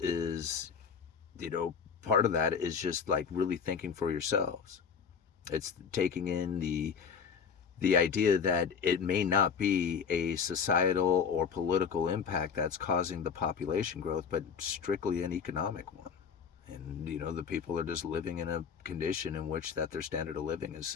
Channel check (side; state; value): right; quieter; 6.5 dB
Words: you know, part of that is just like really thinking for yourselves. It's taking in the idea that it may not be a societal or political impact that's causing the population growth, but strictly an economic one. And you know, the people are just living in a condition in which that their standard of living is